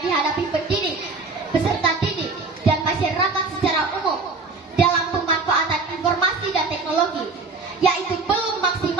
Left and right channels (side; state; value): left; quieter; 4.0 dB